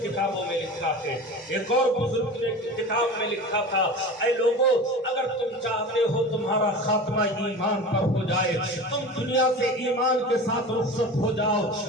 میں لکھا ہے۔ ایک اور بزرگ نے کتاب میں لکھا تھا، اے لوگوں اگر تم چاہتے ہو تمہارا خاتمہ ایمان پر ہو جائے، تم دنیا سے ایمان کے ساتھ رخصت ہو جاؤ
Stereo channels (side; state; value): both; normal; correlation 0.33